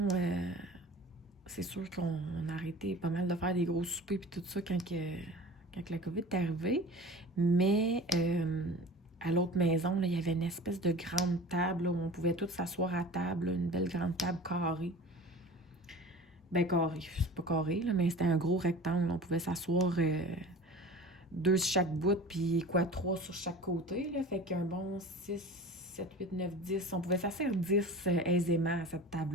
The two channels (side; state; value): both; normal; correlation 0.39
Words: c'est sûr qu'on a arrêté pas mal de faire des gros soupers puis tout ça quand la COVID est arrivée. Mais à l'autre maison, là, il y avait une espèce de grande table là, où on pouvait tous s'asseoir à table, là, une belle grande table carrée. Ben carré, c'est pas carré, là, mais c'était un gros rectangle. On pouvait s'asseoir 2 sur chaque bout, puis 3 sur chaque côté. Là, fait qu'un bon 6, 7, 8, 9, 10. On pouvait s'asseoir 10 aisément à cette